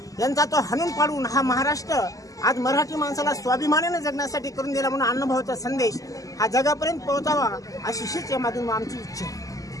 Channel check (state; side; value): late; right; 0.17 ms